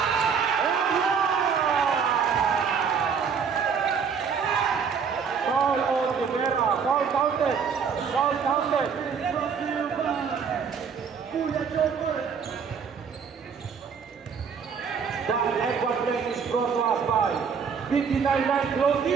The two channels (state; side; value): quieter; left; 6.4 dB